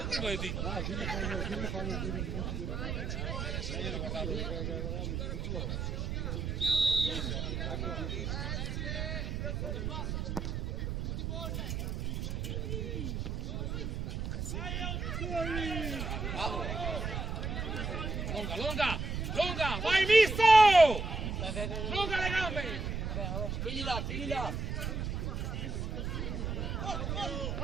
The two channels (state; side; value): noise; right; rumble, 2 dB below the sound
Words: e di. Dimmi quando dire i minuti di Lunga, vai misto! Lunga le gambe! Figli là!